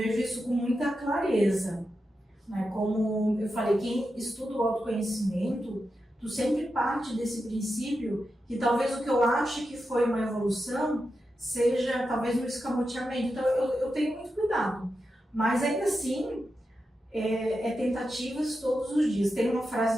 isso com muita clareza. Né? Como eu falei, quem estuda o autoconhecimento, tu sempre parte desse princípio que talvez o que eu ache que foi uma evolução seja talvez um escamoteamento. Então eu tenho muito cuidado. Mas ainda assim, é tentativas todos os dias. Tem uma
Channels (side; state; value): both; normal; correlation 0.89